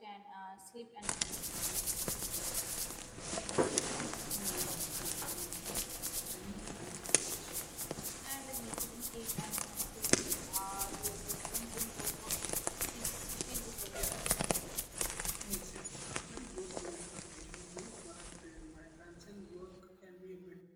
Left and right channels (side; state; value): both; identical; correlation 1.00